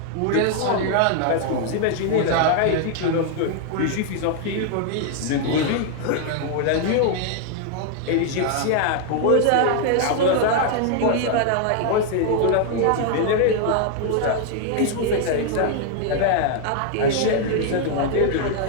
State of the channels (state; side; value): different; both; correlation 0.00